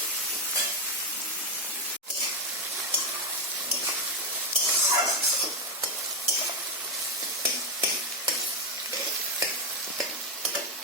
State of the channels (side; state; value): both; normal; correlation 0.05